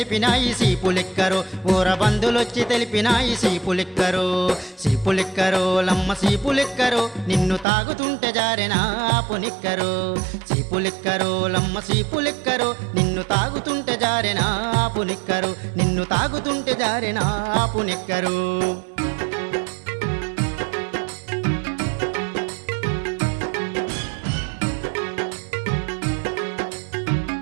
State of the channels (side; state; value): left; drops out; at 7.7 s